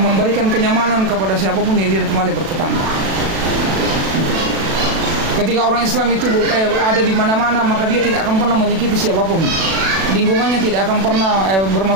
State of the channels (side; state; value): left; late; 36 ms